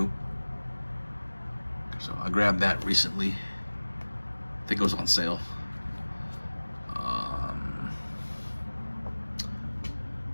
So I grabbed that recently. I think it was on sale.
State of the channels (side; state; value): both; inverted; correlation -1.00